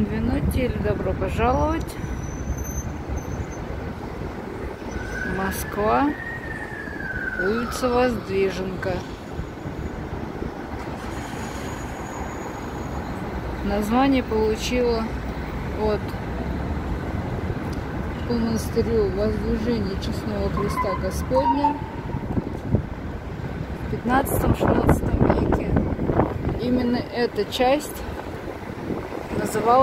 или добро пожаловать. Москва, улица Воздвиженка. Название получила от по монастырю Воздвижения Честного Христа Господня в 15-16 веке. Именно эта часть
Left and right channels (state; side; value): identical; both; correlation 1.00